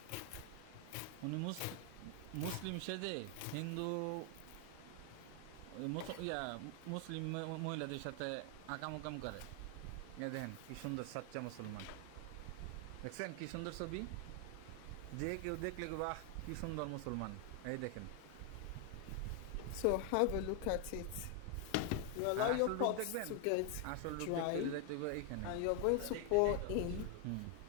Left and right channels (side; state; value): both; different; correlation 0.00